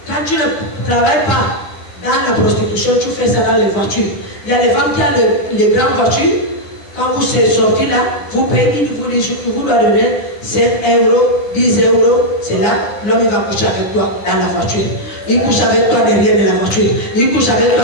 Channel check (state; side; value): late; right; 11 ms